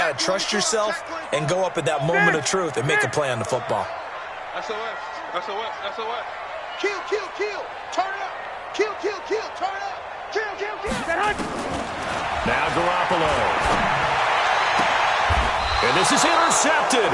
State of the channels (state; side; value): identical; both; correlation 1.00